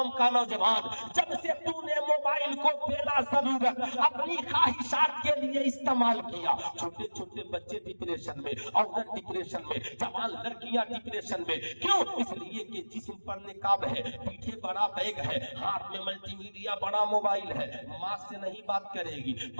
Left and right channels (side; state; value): both; inverted; correlation -1.00